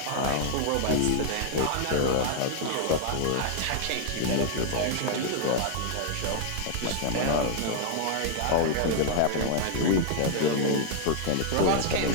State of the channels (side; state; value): both; different; correlation -0.01